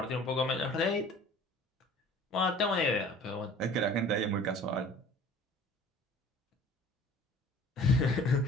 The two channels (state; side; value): normal; both; correlation 0.47